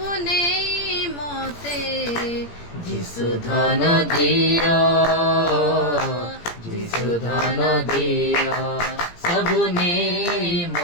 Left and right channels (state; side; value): late; right; 17 ms